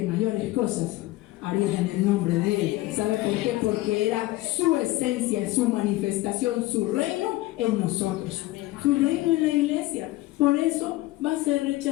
mayores cosas harían en el nombre de Él. ¿Sabe por qué? Porque era su esencia, su manifestación, su reino en nosotros, su reino en la iglesia. Por eso va a ser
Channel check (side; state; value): right; quieter; 18.1 dB